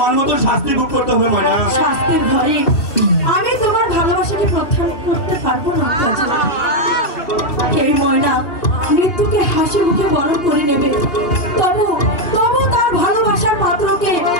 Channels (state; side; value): late; right; 2.6 ms